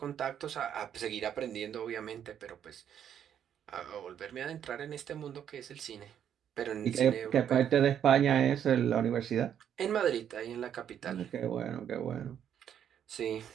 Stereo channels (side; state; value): left; quieter; 9.3 dB